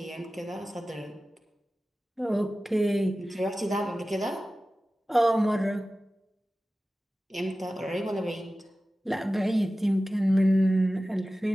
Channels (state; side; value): normal; both; correlation 0.95